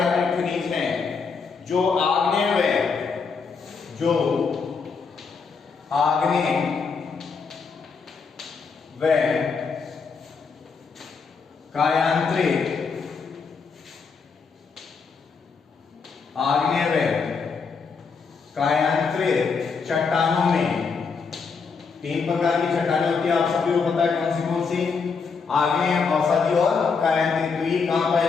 खनिज है जो आग्नेय व कायांतरित चट्टानों में, 3 प्रकार की चट्टानें होती है, आप सभी को पता है कौन सी? आग्नेय, अवसादी और कायांतरित। तो ये कहां पाया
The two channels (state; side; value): quieter; right; 5.2 dB